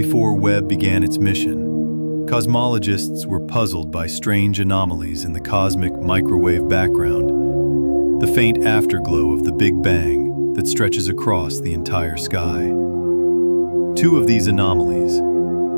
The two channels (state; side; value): inverted; both; correlation -1.00